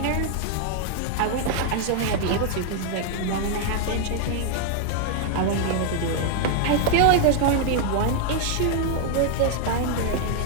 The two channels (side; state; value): both; different; correlation 0.00